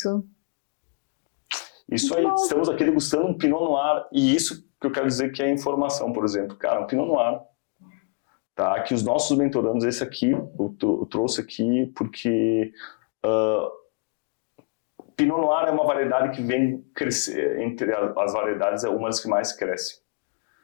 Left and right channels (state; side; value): quieter; right; 35.9 dB